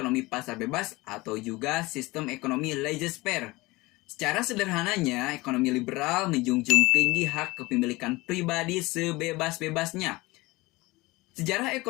pasar bebas atau juga sistem ekonomi laissez-faire. Secara sederhananya, ekonomi liberal menjunjung tinggi hak kepemilikan pribadi sebebas-bebasnya. Sejarah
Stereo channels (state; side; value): quieter; right; 21.6 dB